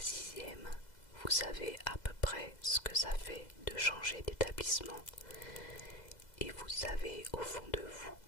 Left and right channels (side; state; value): right; late; 2.0 ms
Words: vous savez à peu près ce que ça fait de changer d'établissement. Et vous savez au fond de vous